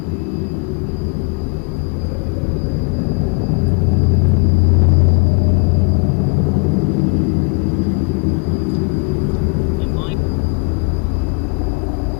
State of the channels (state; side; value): quieter; right; 32.9 dB